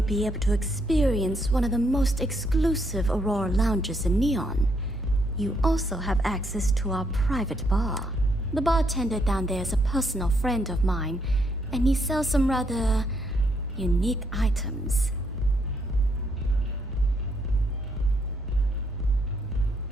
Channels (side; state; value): both; normal; correlation 0.74